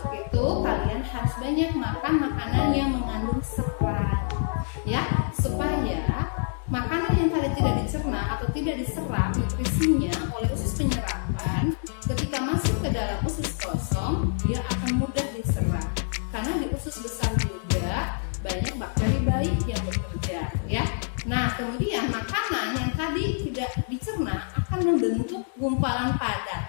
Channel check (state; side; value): silent; right; digital silence